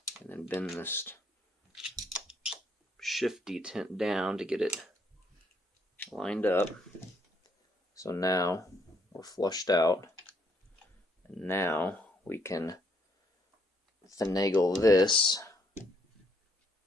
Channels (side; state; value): both; normal; correlation 0.71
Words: and then bend this shift detent down to get it lined up. So now we're flushed out, and now we can finagle this